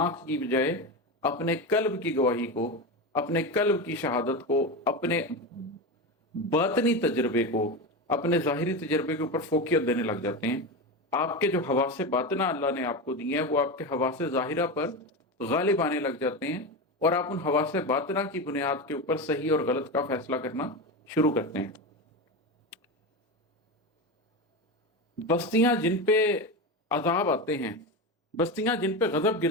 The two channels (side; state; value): both; normal; correlation 0.19